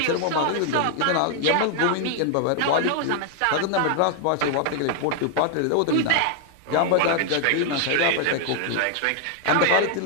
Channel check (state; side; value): different; both; correlation 0.00